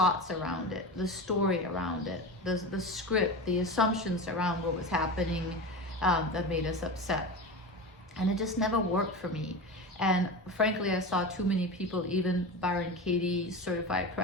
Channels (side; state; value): both; normal; correlation 0.26